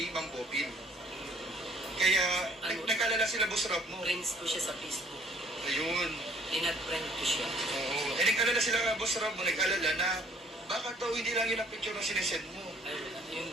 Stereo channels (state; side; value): normal; both; correlation 0.59